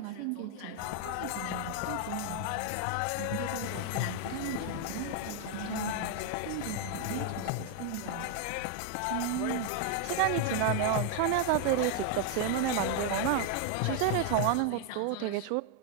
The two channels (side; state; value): both; different; correlation 0.00